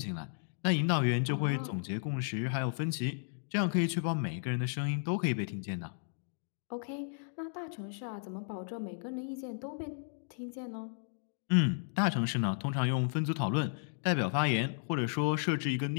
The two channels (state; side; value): silent; right; digital silence